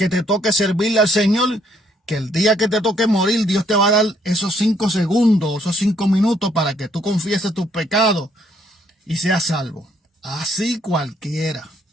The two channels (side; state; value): both; normal; correlation 0.68